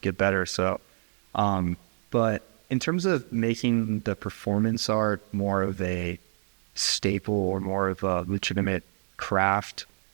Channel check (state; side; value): silent; left; digital silence